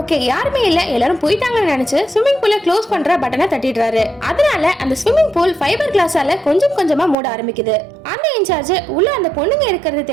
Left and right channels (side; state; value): left; drops out; at 7.2 s